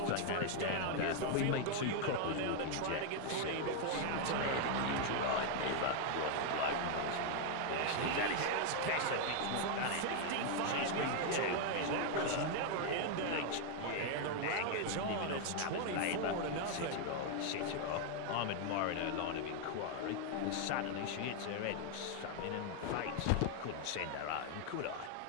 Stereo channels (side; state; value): both; different; correlation 0.00